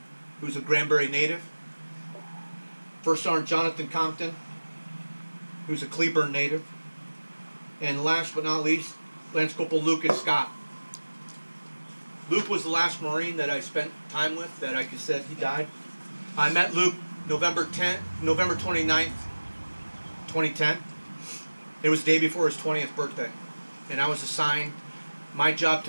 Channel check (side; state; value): both; inverted; correlation -1.00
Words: who's a Granbury native, First Sergeant Jonathan Compton, who's a Cleburne native, and last but not least, Lance Corporal Lucas Scott. Luke was the last Marine that I spent time with that I could said he died. I met Luke November 29th, 2010. It was the day before his 20th birthday, and I was assigned. My job